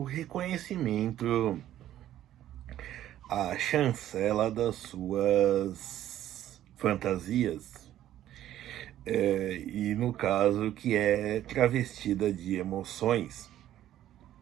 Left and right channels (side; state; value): left; quieter; 12.4 dB